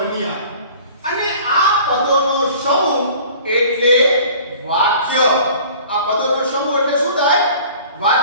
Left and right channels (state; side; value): inverted; both; correlation -0.47